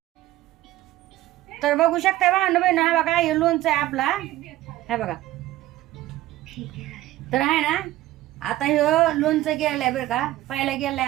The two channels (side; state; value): left; quieter; 15.7 dB